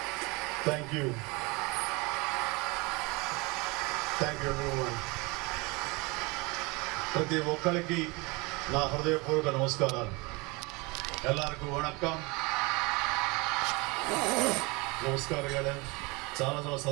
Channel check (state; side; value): quieter; left; 26.3 dB